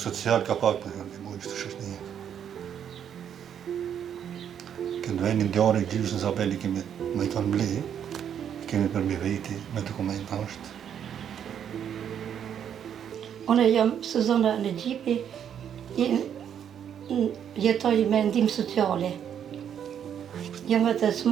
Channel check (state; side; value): quieter; left; 8.9 dB